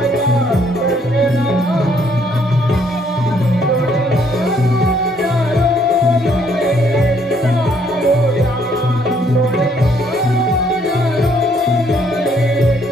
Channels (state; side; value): normal; both; correlation 0.67